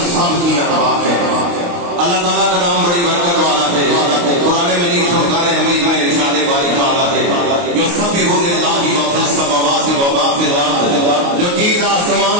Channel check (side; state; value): left; late; 29 ms